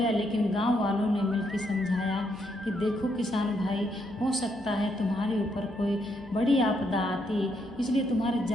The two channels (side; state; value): left; noise; hum, 21 dB below the sound